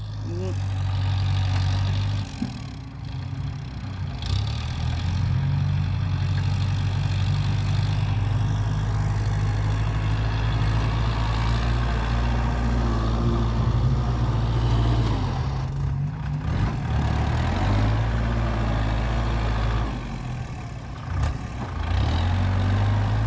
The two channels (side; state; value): both; identical; correlation 1.00